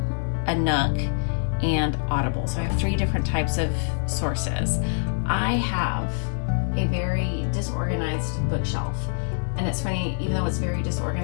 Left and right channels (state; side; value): silent; right; digital silence